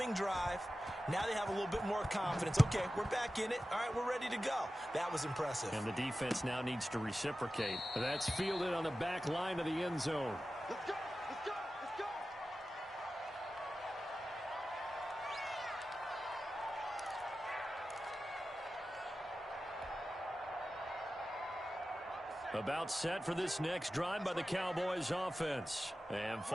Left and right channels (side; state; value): both; normal; correlation 0.94